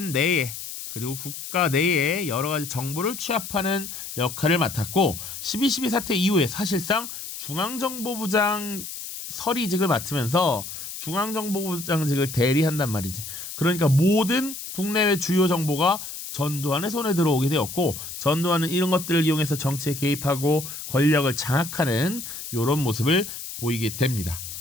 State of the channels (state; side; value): noise; left; hiss, 9 dB below the sound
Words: 내에 그리고 국가 내에 여러 가지 정보를 취합하는 역할을 맡았고 12.12 사태 이후에 사실상 중앙정보부장 서리직을 맡으면서 중앙정보부장직을 대리한단 말이지. 그러니까 모든 국내외 주요 정보가 전두환의 손에 들어오게 되었고 전두환은 이런 것들을 이용해서 정치에 개입하고 권력을 장악하는 이런 모습을 보이게 됩니다.